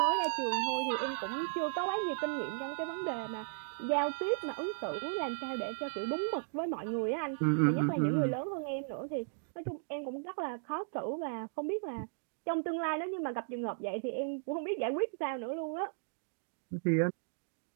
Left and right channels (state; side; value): silent; left; digital silence